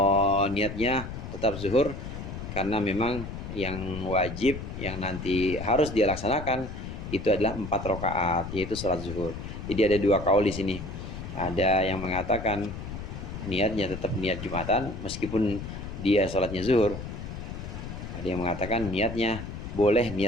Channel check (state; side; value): noise; left; rumble, 8 dB below the sound